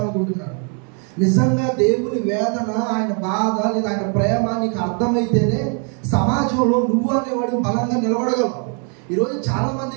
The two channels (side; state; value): left; quieter; 39.8 dB